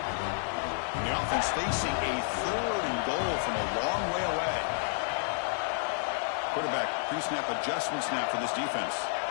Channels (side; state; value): right; silent; digital silence